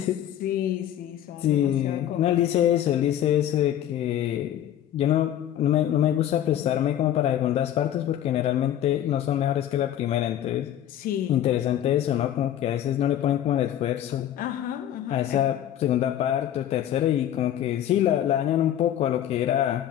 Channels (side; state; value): right; quieter; 11.2 dB